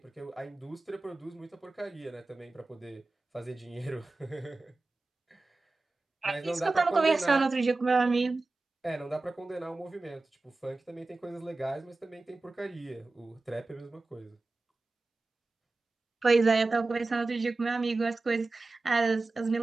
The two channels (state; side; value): quieter; left; 3.4 dB